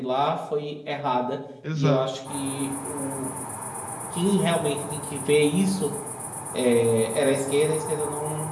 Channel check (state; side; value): identical; both; correlation 1.00